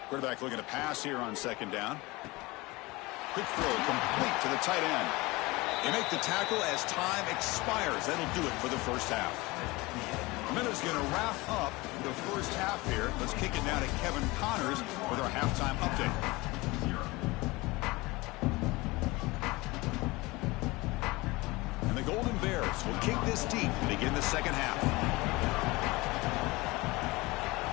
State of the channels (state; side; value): quieter; right; 22.5 dB